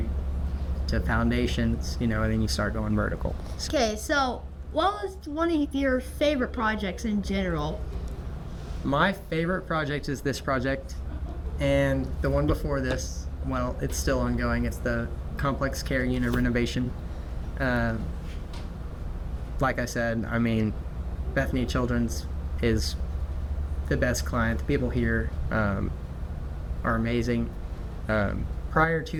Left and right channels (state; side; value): identical; both; correlation 1.00